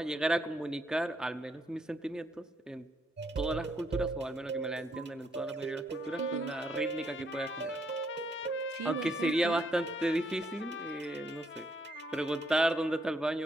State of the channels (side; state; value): both; normal; correlation 0.74